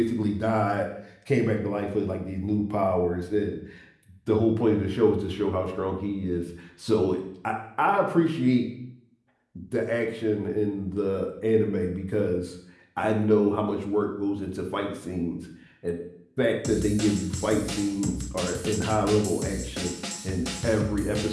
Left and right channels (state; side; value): identical; both; correlation 1.00